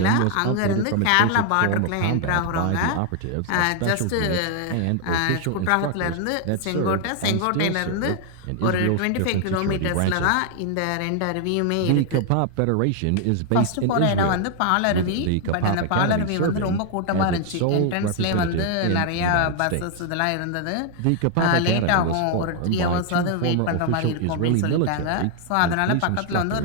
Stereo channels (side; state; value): both; different; correlation 0.00